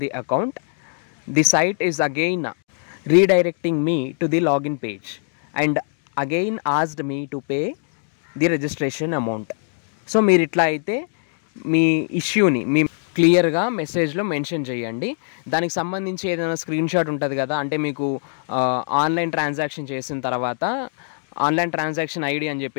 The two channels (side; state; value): right; silent; digital silence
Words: the account, the site is again redirecting me to the login page and again asked me to pay the registration amount. So మీరు ఇట్లా అయితే మీ ఇష్యూని మీ క్లియర్గా మెసేజ్లో mention చేయండి. దానికి సంబంధించి ఏదైనా స్క్రీన్ షాట్ ఉంటుంది కదా, అంటే మీకు ఆన్లైన్ ట్రాన్సాక్షన్ చేసిన తర్వాత ఆన్లైన్ ట్రాన్సాక్షన్ ఐడి అని